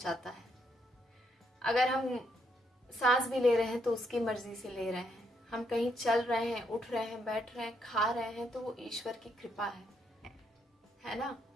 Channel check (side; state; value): both; normal; correlation 0.76